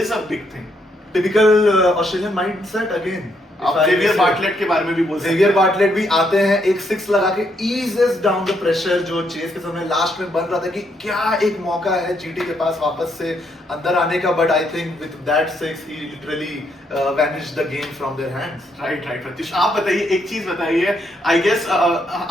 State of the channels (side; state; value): both; normal; correlation 0.75